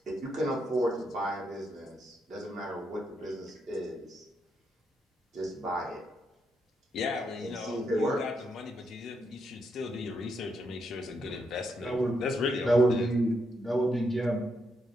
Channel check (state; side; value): normal; both; correlation 0.80